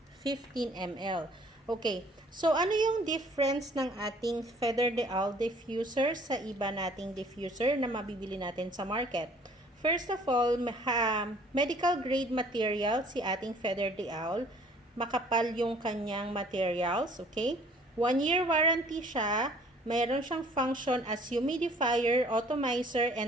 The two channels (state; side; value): normal; both; correlation 0.55